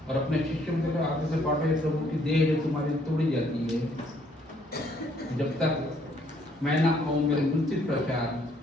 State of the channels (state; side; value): normal; both; correlation 0.66